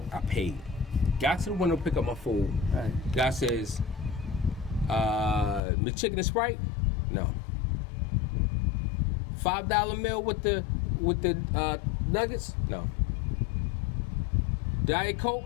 I paid. Got to the window, pick up my food. Right. Guy says, McChicken and Sprite? No. $5 meal with the nuggets? No. Diet Coke?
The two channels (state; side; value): drops out; right; at 5.6 s